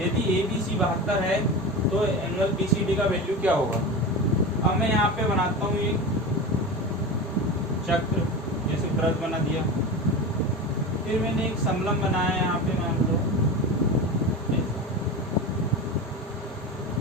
ABC 72 है तो एंगल BCD का वैल्यू क्या होगा। अब मैं यहाँ पे बनाता हूँ एक चक्र, जैसे वृत्त बना दिया, फिर मैंने एक समलंब बनाया यहाँ पे, मान लो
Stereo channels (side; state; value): both; normal; correlation 0.26